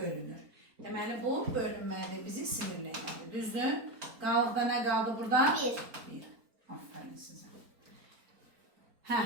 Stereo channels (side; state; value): left; late; 4.4 ms